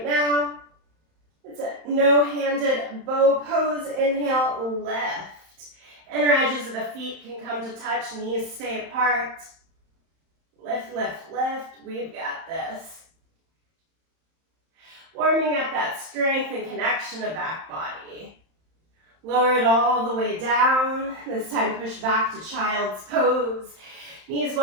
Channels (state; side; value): late; left; 31 ms